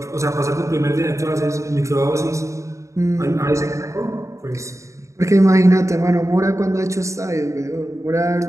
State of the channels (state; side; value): late; left; 0.15 ms